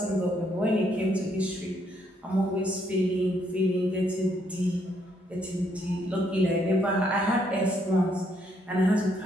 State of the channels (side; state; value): both; normal; correlation 0.72